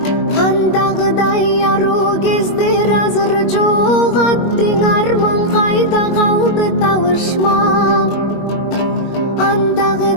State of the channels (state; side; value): late; right; 21 ms